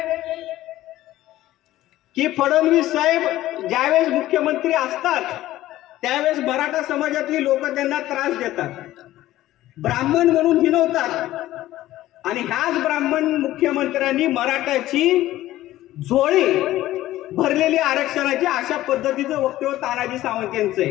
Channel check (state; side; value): quieter; right; 15.1 dB